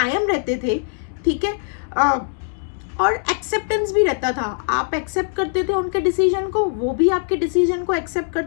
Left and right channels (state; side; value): silent; right; digital silence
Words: रहते थे, ठीक है। और एक्सेप्टेंस भी रहता था, आप एक्सेप्ट करते थे उनके डिसीजन को, वो भी आपके डिसीजन को एक्सेप्ट